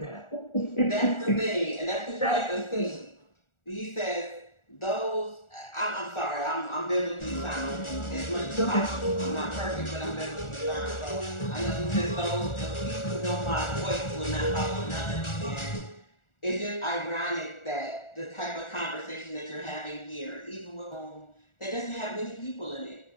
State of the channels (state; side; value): late; right; 1.4 ms